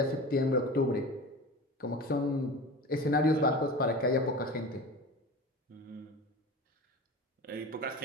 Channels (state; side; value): normal; both; correlation 0.33